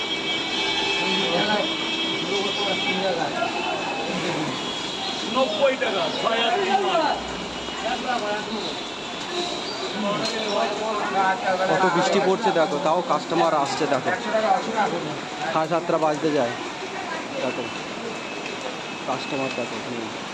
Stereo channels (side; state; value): both; identical; correlation 1.00